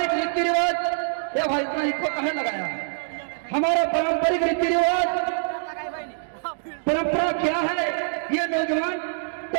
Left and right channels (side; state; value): left; silent; digital silence